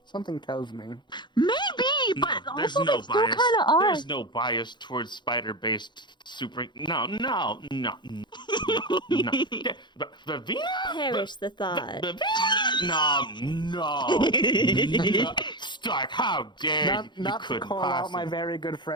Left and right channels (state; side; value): late; right; 0.22 ms